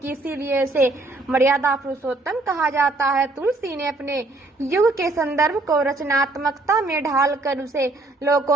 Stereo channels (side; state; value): left; quieter; 3.1 dB